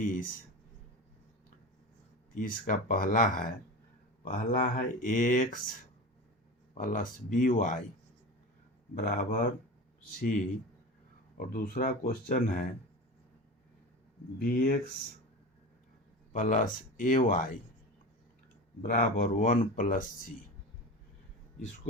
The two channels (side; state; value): both; normal; correlation 0.29